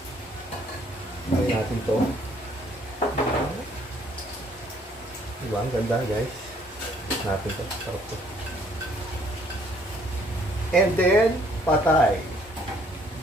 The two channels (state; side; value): normal; both; correlation 0.63